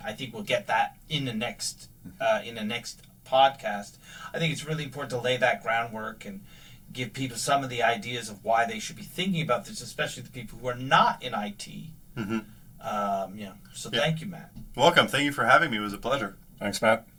I think we'll get that in the next podcast. I think it's really important to lay that groundwork and give people some of the ideas of why they should be thinking about this, especially the people who are not in IT. So thank you, Matt. Welcome. Thank you for having me. It was a pleasure. Thanks, Matt.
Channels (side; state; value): both; identical; correlation 1.00